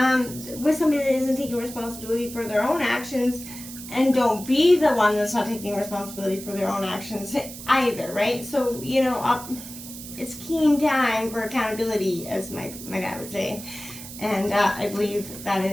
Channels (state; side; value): noise; right; hiss, 13 dB below the sound